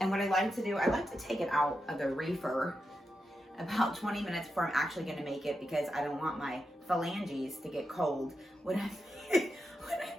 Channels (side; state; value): both; normal; correlation 0.87